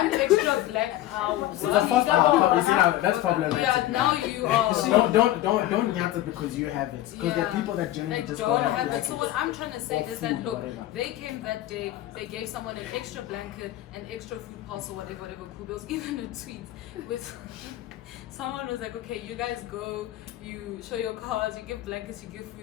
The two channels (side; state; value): right; quieter; 14.6 dB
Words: extra black house. It's the first hour. You see now that's problematic. Yeah, now you are. Don't yat it because you have it. Because there are people that generally Like just don't don't have have it. So what I'm trying to say Or is that food, look, whatever. they came that day, they gave someone an extra blanket, an extra food parcel, whatever cool. There was even a tweet with someone was like, okay, you guys go, you show your cards, you give blankets, you give